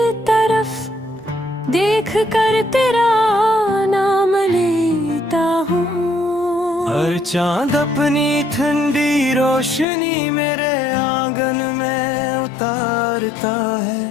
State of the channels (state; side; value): drops out; right; at 9.9 s